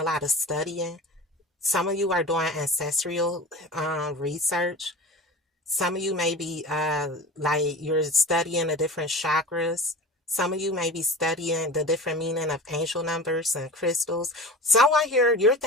lot of studying. Some of you are doing ancestral research. Some of you may be like you're studying the different chakras. Some of you may be studying the different meaning of angel numbers and crystals. Someone here, you're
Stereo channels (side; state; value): both; normal; correlation 0.34